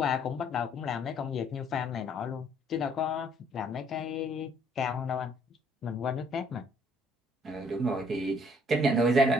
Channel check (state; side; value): normal; both; correlation 0.63